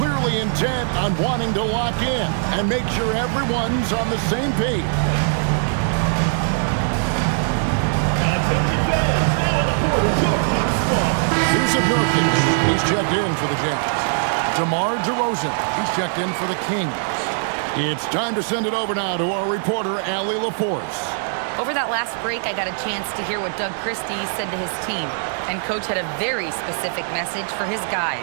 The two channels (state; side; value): silent; left; 65 dB below the other